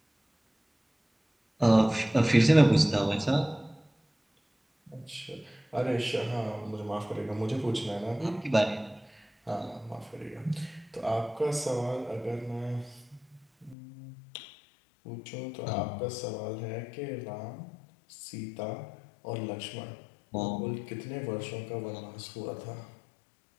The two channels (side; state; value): right; drops out; at 13.8 s